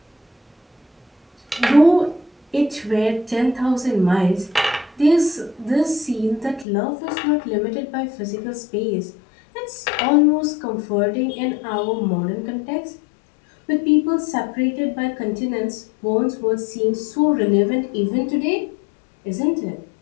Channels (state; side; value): drops out; right; at 6.7 s